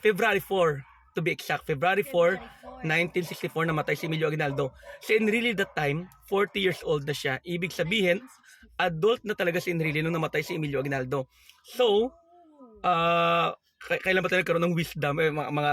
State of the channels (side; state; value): both; identical; correlation 1.00